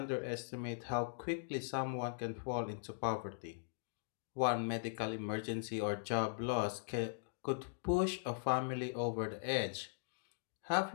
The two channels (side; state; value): right; silent; digital silence